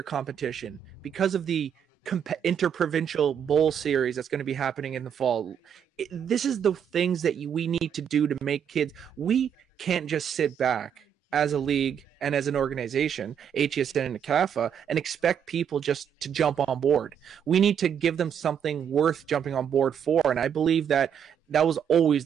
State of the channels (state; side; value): quieter; left; 8.3 dB